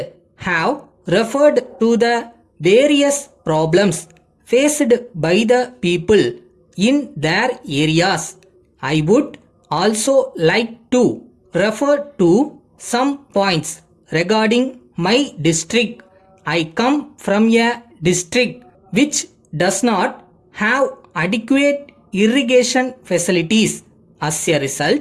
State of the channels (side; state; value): both; identical; correlation 1.00